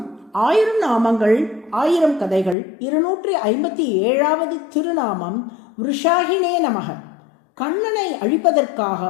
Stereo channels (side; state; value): right; drops out; at 2.6 s